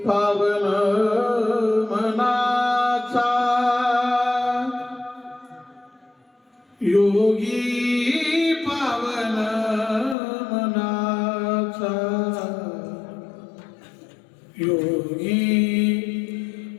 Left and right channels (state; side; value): drops out; right; at 10.2 s